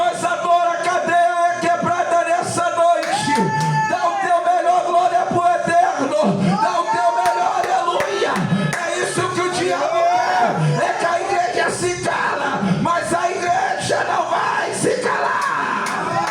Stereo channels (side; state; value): both; identical; correlation 1.00